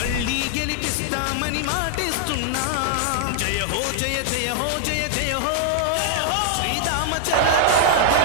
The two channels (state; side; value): different; both; correlation -0.01